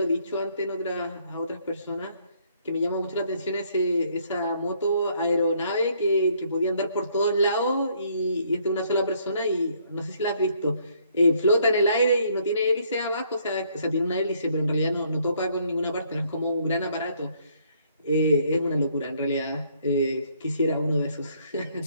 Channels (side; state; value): both; inverted; correlation -0.67